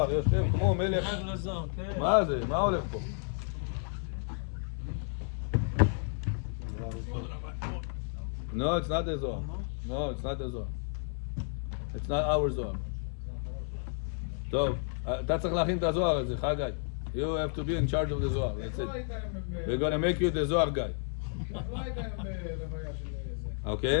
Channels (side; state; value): right; silent; 56 dB below the other